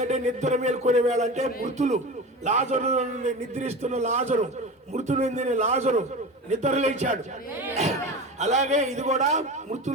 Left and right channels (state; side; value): normal; both; correlation 0.29